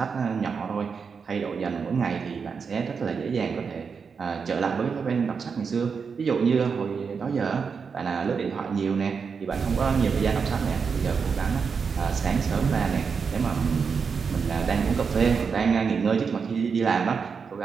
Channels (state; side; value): quieter; left; 5.7 dB